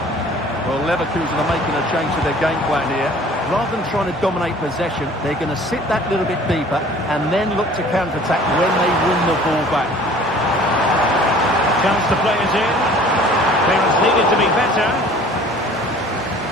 Well, Leverkusen are making a change to their game plan here. Rather than trying to dominate possession, they're going to sit that little bit deeper and then look to counter-attack when they win the ball back. Chance to play it in. Clearance needed to be better.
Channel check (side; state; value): both; normal; correlation 0.50